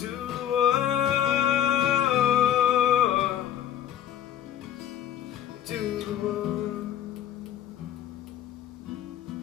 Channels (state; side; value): quieter; right; 10.8 dB